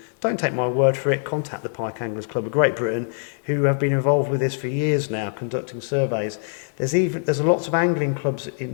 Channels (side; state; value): right; silent; digital silence